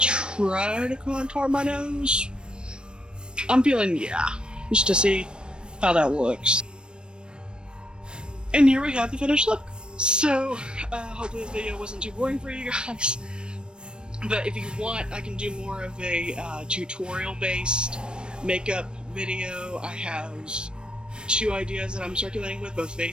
try to contour my nose? I'm feeling, yeah, just to see how that looks. And here we have the finished look. So, hopefully this video wasn't too boring for you guys. But if you want, I can do more of a tutorial-based makeup video. I have 2 ideas that I'm circulating with, both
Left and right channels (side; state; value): left; late; 0.053 ms